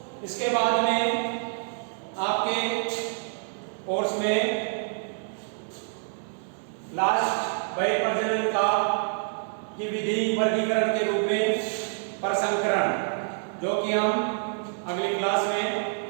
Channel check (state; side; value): silent; left; digital silence